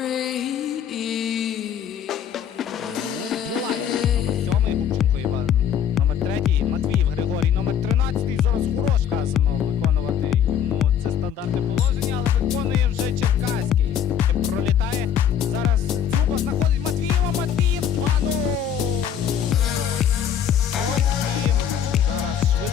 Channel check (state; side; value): quieter; right; 8.9 dB